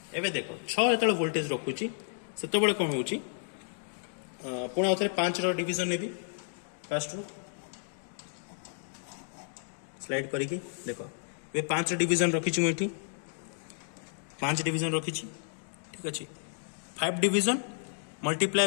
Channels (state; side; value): silent; right; digital silence